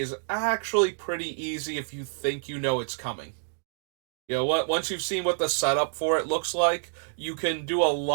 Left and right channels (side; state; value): left; silent; digital silence